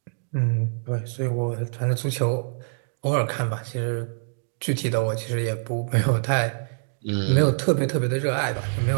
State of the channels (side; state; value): left; silent; digital silence